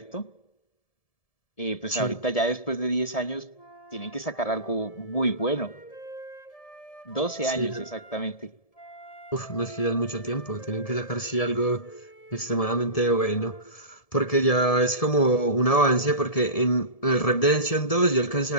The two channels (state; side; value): late; right; 1.7 ms